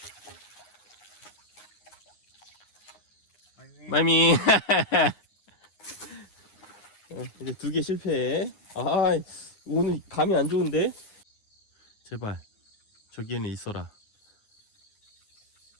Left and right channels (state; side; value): late; right; 9.7 ms